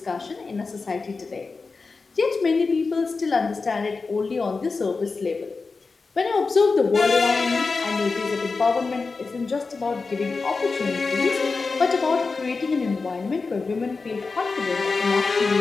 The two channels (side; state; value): right; quieter; 4.2 dB